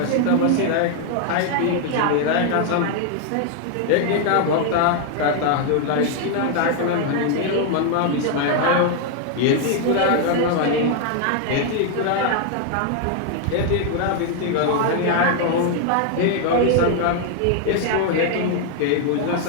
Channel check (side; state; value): both; different; correlation 0.00